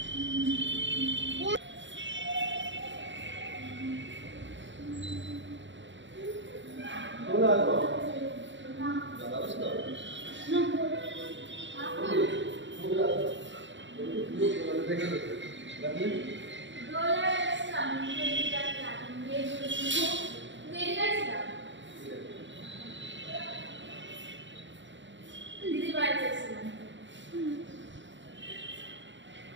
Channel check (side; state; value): left; late; 0.54 ms